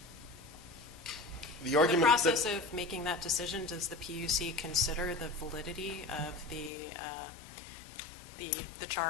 The In the process of making that decision, does the PUC consider the validity of the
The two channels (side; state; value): right; drops out; at 6.7 s